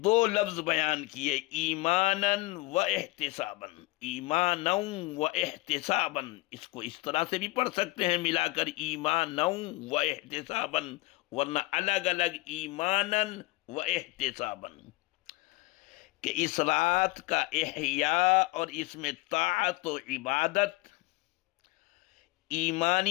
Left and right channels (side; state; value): right; quieter; 21.5 dB